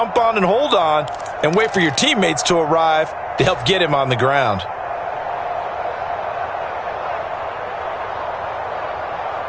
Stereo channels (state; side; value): identical; both; correlation 1.00